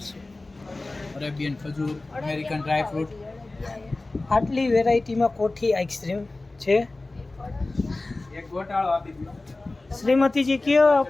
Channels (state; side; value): quieter; right; 3.1 dB